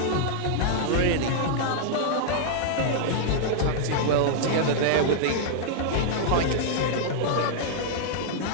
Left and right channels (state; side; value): different; both; correlation -0.01